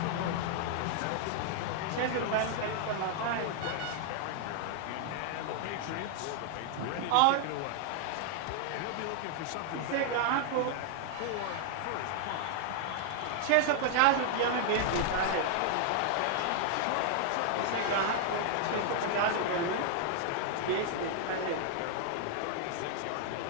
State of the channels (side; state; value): both; different; correlation 0.00